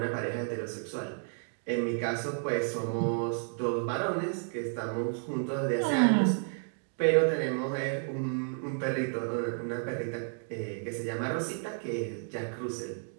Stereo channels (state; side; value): silent; left; 57 dB below the other